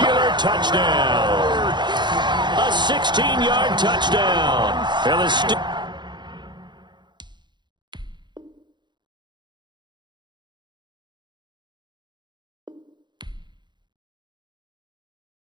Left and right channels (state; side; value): late; left; 0.22 ms